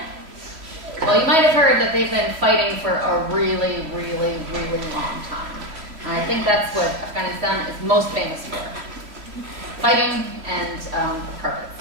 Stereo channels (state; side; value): late; left; 3.0 ms